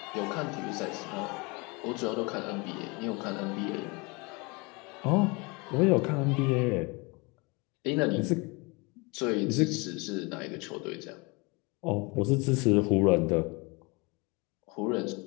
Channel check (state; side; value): quieter; right; 27.7 dB